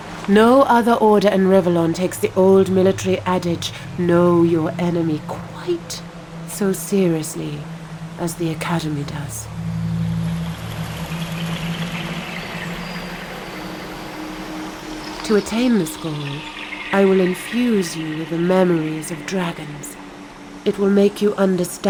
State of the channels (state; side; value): identical; both; correlation 1.00